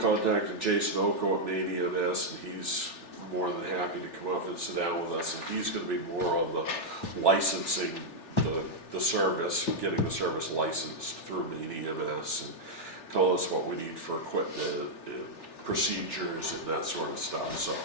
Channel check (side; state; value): right; late; 3.4 ms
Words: Jason Oko at Maine EMS, and he's more than happy to come up and sit down with us, and he's gonna be more on the licensing, the service, getting the service licensed through Maine EMS, and tell us what we need for equipment and procedures and that sort of stuff.